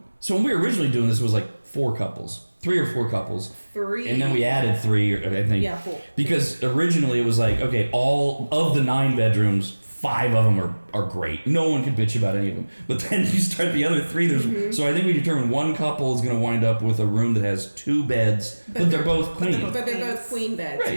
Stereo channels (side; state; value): both; inverted; correlation -1.00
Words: So when we were originally doing this, it was like 3 or 4 couples, 3. and then we added 3, I think. Yeah, 4. Because originally it was like, okay, all of the 9 bedrooms, 5 of them are great. No one can bitch about any of them. But then you start the other 3. So I think we determined one couple is going to wind up with a room that has 2 beds, but they're both queen. But they're both queen beds. Right.